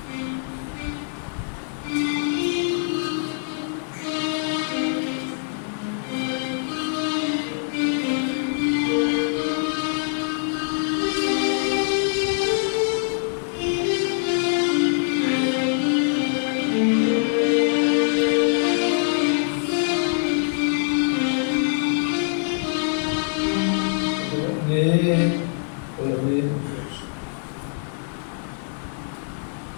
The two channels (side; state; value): right; silent; 61 dB below the other